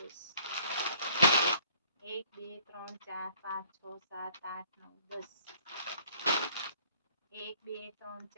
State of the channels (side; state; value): both; inverted; correlation -0.59